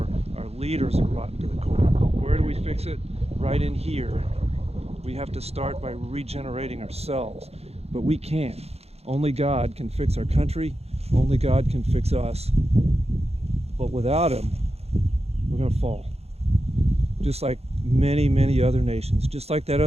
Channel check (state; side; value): late; left; 0.30 ms